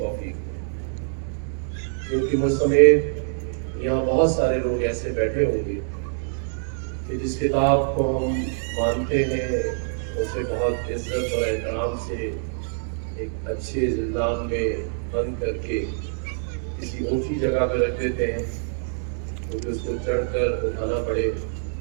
دے، کیونکہ مجھ سمیت یہاں بہت سارے لوگ ایسے بیٹھے ہوں گے کہ جس کتاب کو ہم مانتے ہیں اسے بہت عزت اور احترام سے ایک اچھے زندان میں بند کر کے کسی اونچی جگہ پہ رکھ دیتے ہیں، کیونکہ اس کو چڑھ کر اٹھانا پڑے،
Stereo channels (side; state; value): left; silent; digital silence